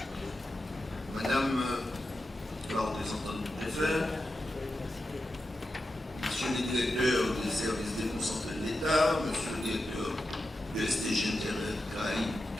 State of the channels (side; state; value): both; normal; correlation 0.90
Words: Madame la représentante du préfet, Monsieur le directeur des services déconcentrés de l'État, Monsieur le directeur de STG Internet Caraïbes